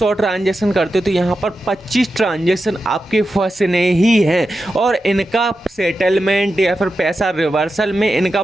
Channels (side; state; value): both; normal; correlation 0.90